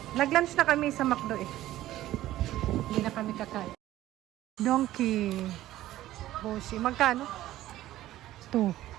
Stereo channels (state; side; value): quieter; left; 14.6 dB